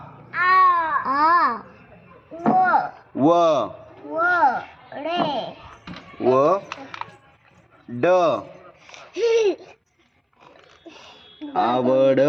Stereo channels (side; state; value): both; identical; correlation 1.00